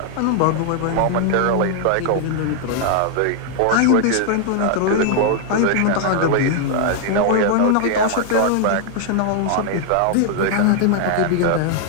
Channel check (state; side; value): different; both; correlation 0.00